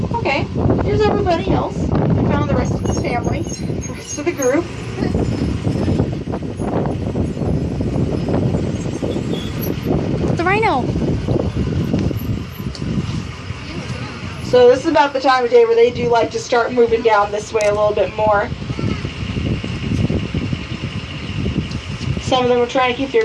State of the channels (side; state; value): both; identical; correlation 1.00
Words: Okay, here's everybody else. We found the rest of the family, the rest of the group. The rhino. So this is about the time of day where they do like to start moving down this way a little bit more. Some of them are trying to keep